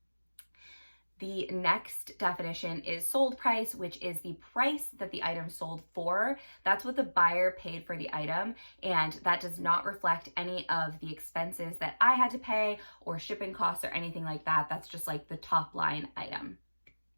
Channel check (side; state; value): both; inverted; correlation -1.00